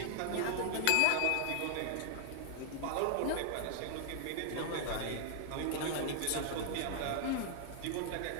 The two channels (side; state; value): both; different; correlation -0.01